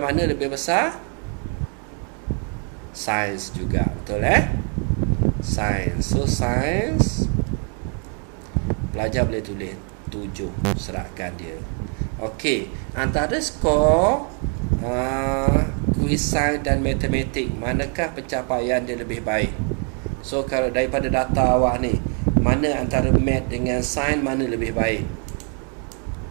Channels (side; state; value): left; quieter; 39.8 dB